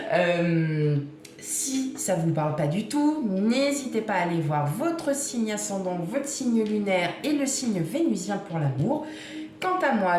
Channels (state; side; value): identical; both; correlation 1.00